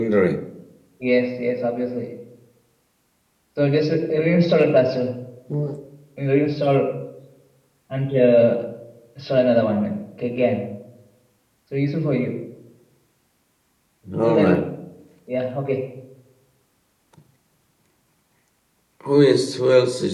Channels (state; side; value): identical; both; correlation 1.00